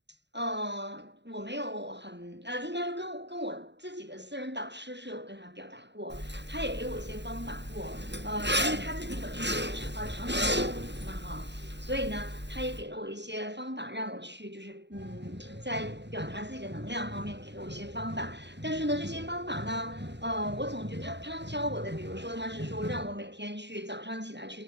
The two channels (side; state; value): left; late; 0.51 ms